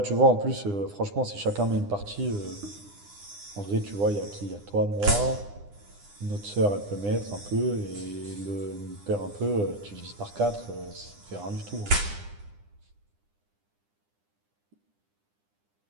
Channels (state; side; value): late; left; 9.9 ms